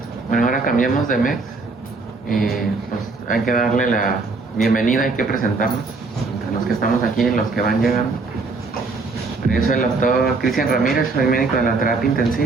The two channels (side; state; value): left; quieter; 3.9 dB